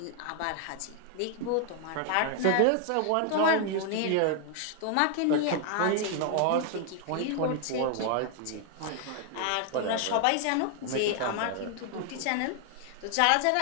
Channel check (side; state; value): both; different; correlation 0.00